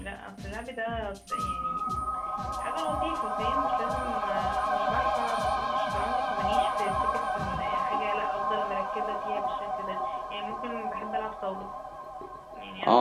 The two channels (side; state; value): both; identical; correlation 1.00